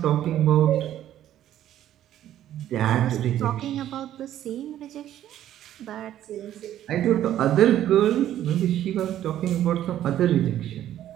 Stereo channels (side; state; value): left; quieter; 12.0 dB